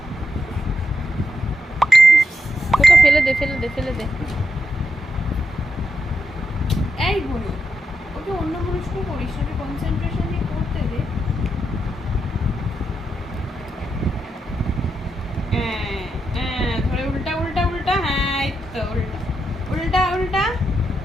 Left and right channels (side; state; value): both; normal; correlation 0.84